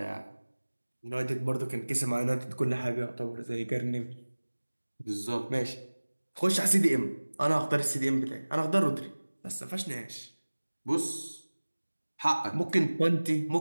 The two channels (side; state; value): both; inverted; correlation -1.00